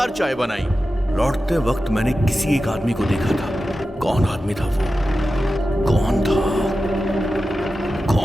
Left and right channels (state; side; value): normal; both; correlation 0.93